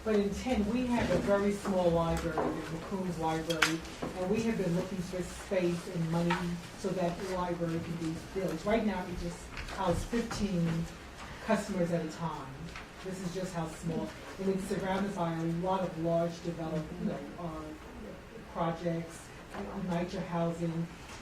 but in 10, we have a very small library, the McCombs Library, and we have been looking for space and money so that the library can be built. Right now, we just house 15 customers at a time. This is just how small, and it's surrounded by a lot of large development, projects, nicer housing,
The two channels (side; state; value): both; identical; correlation 1.00